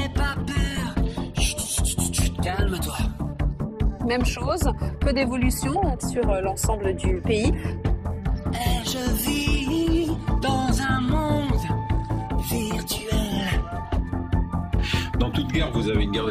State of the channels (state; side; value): identical; both; correlation 1.00